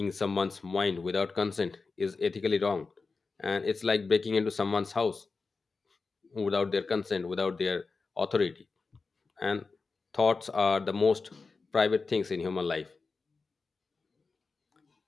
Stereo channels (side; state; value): right; quieter; 4.3 dB